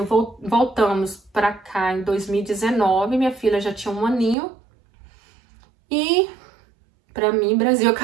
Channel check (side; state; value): left; drops out; at 4.4 s